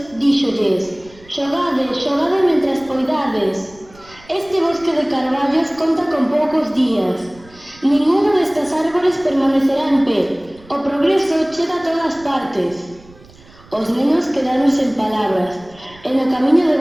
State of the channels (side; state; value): right; noise; rumble, 24 dB below the sound